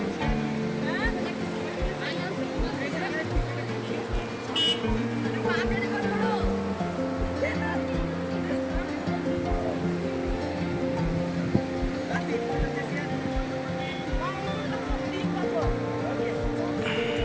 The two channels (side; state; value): both; identical; correlation 1.00